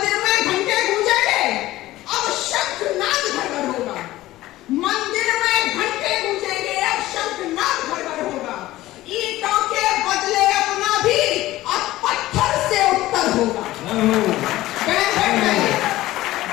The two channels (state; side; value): quieter; right; 16.4 dB